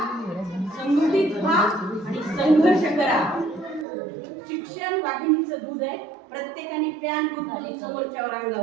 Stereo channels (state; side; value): drops out; left; at 3.9 s